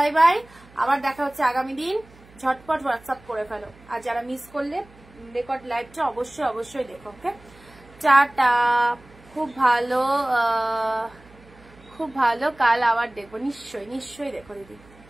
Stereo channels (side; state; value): right; noise; hum, 25 dB below the sound